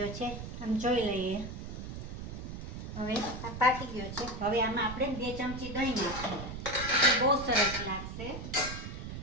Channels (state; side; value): noise; right; rumble, 8 dB below the sound